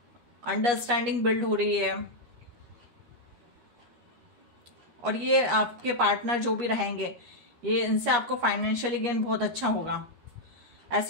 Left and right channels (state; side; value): late; left; 13 ms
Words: अंडरस्टैंडिंग बिल्ड हो रही है। और ये आपके पार्टनर जो भी रहेंगे, ये इनसे आपको फाइनेंशियली गेन बहुत अच्छा होगा।